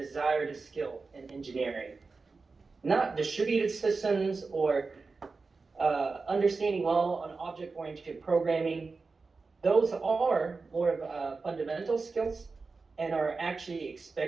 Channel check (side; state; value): left; quieter; 4.2 dB